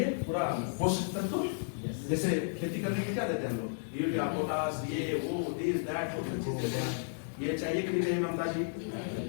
पूरा पोषक तत्व। जैसे खेती करने के क्या देते हैं हम लोग? यूरिया, पोटास, ये वो दिस दैट बहुत चीज देते हैं। ये चाहिए कि नहीं चाहिए ममता जी?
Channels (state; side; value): silent; right; digital silence